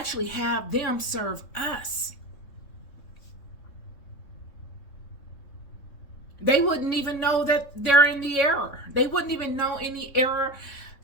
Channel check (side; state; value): right; late; 3.7 ms